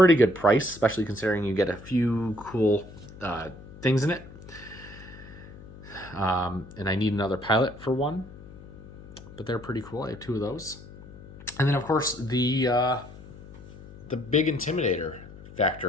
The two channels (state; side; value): noise; left; hum, 18 dB below the sound